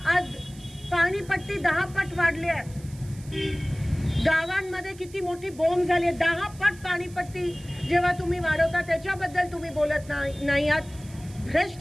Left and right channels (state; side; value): noise; right; hiss, 22 dB below the sound